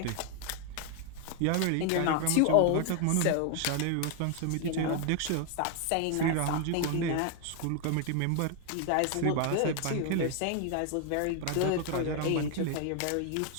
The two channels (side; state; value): both; different; correlation 0.00